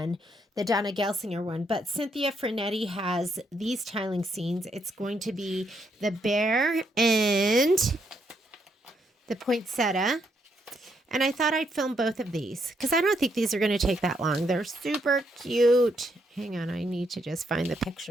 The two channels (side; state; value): both; normal; correlation 0.76